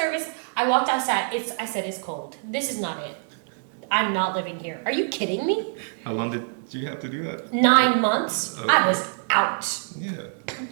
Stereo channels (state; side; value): silent; left; 62 dB below the other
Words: I walked outside. I said, it's cold. This is not it. I'm not living here. Are you kidding me? How long did you have to do that? 9 months. Okay. I was out. Yeah.